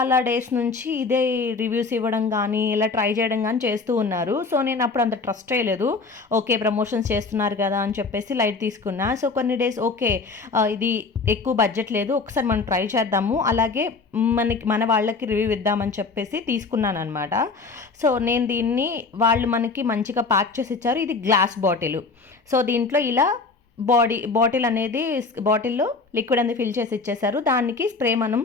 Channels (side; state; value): right; quieter; 4.2 dB